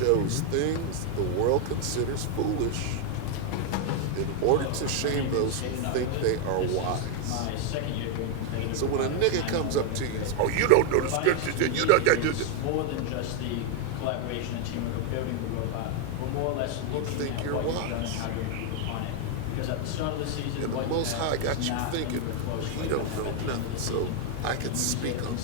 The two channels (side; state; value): both; different; correlation 0.01